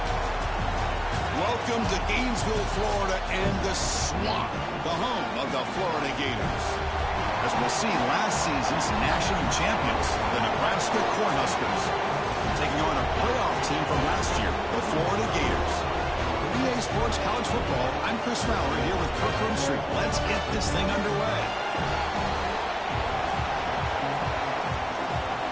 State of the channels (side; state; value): both; identical; correlation 1.00